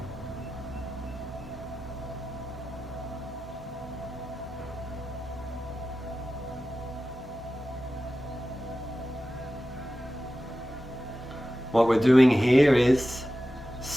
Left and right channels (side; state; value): both; normal; correlation 0.93